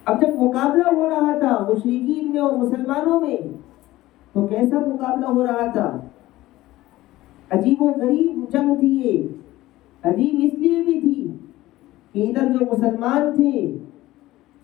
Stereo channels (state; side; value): quieter; right; 16.8 dB